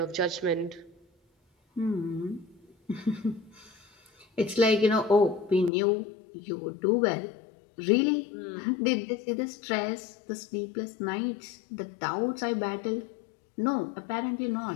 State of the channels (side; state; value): right; drops out; at 5.7 s